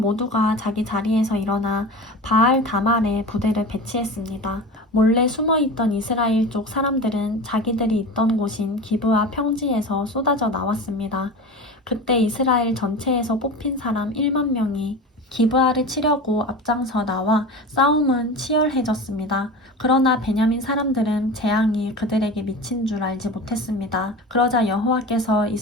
자기 자리에서 일어나 바알 다말에 부대를 배치했습니다. 몰래 숨어있던 이스라엘 쪽 사람들은 자기들이 있던 곳인 기브아 평지에서 쏟아져 나왔습니다. 그때 이스라엘 전체에서 뽑힌 사람 1만 명이 기브아를 치려고 앞장서 나와 싸움은 치열해졌습니다. 그러나 베냐민 사람들은 재앙이 그들에게 미친 줄 알지 못했습니다. 그러자 여호와께서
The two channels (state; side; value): normal; both; correlation 0.31